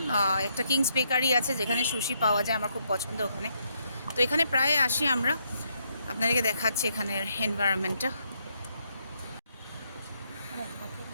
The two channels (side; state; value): both; inverted; correlation -0.76